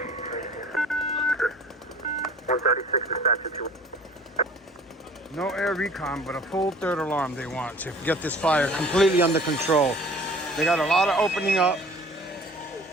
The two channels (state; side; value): normal; both; correlation 0.49